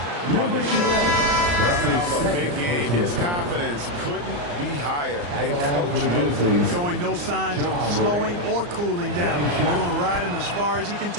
on his shoulder. Coming off a big game, his confidence couldn't be higher. And coach knows it. Showing no signs of slowing or cooling down. They're going to ride him as far as he can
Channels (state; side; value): late; left; 34 ms